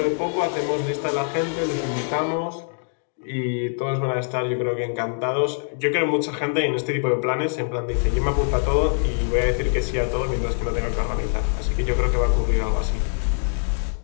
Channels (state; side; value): silent; right; 63 dB below the other